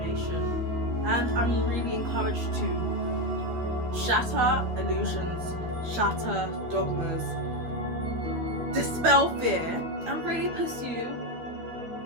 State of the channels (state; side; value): late; left; 12 ms